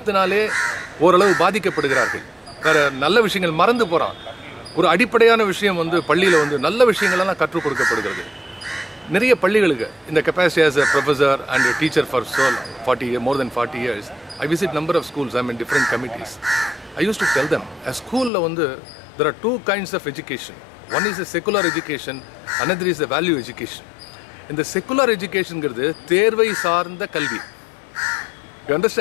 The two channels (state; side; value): drops out; right; at 18.3 s